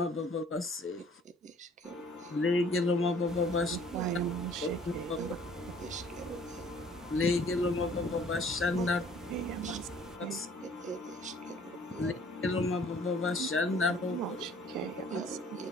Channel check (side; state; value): both; normal; correlation 0.56